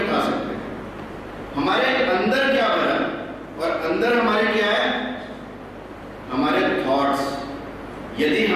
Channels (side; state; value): both; identical; correlation 1.00